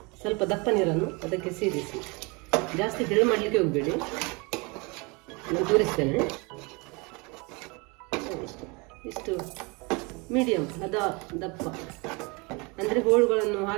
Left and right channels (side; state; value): left; quieter; 28.5 dB